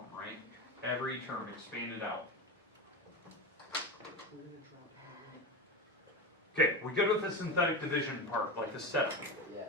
right? Every term expanded out. Okay, we go with the synthetic division part, like the setup. Yes.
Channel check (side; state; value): both; normal; correlation 0.22